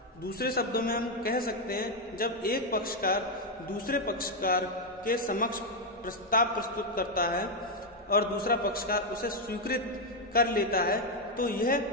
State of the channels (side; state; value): both; normal; correlation 0.03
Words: दूसरे शब्दों में हम कह सकते हैं जब एक पक्षकार दूसरे पक्षकार के समक्ष प्रस्ताव प्रस्तुत करता है और दूसरा पक्षकार उसे स्वीकृत कर लेता है तो यह